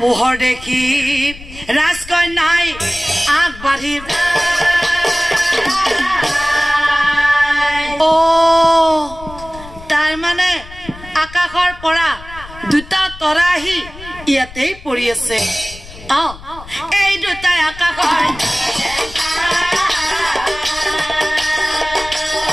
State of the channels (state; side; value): noise; left; rumble, 17 dB below the sound